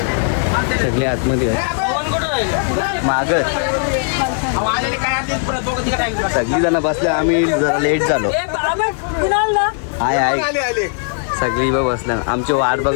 सगळे आतमध्ये मागत सगळी जण बसले. आम्ही जरा लेट झालो. आहे सगळी बघ बसल्या. आमची वाट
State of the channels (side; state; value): right; silent; 59 dB below the other